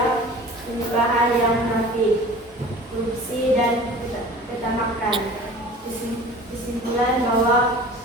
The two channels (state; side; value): normal; both; correlation 0.42